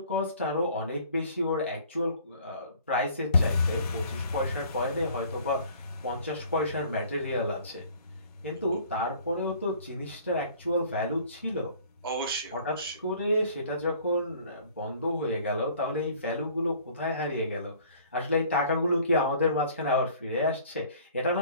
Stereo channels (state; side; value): inverted; both; correlation -0.53